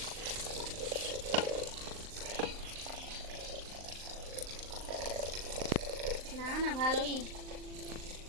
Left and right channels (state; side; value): late; left; 39 ms